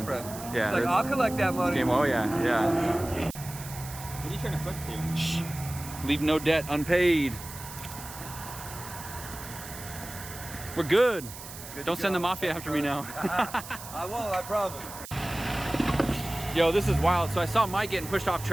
girlfriend. Yeah. Like, that's- I'll collect that money. Game. Oh yeah, yeah. What are you trying to put to? Shh. Leave no debt unpaid. We're good. Don't send the mafia after me now. I won't, I promise. Yo, this is wild. So I saw Mike getting pushed off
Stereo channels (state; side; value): noise; right; hiss, 13 dB below the sound